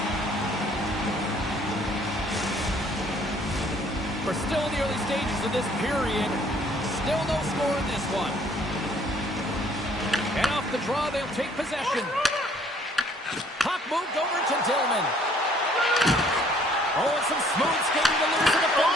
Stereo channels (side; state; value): both; normal; correlation 0.60